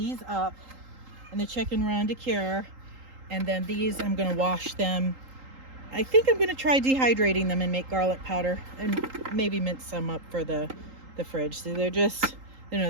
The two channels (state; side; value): late; left; 3.8 ms